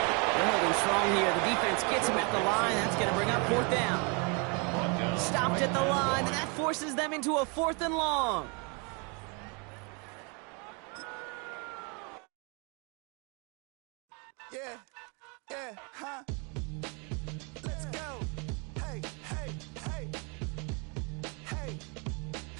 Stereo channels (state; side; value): quieter; left; 33.1 dB